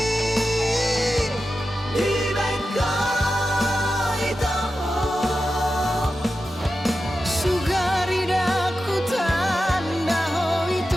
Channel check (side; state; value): both; normal; correlation 0.91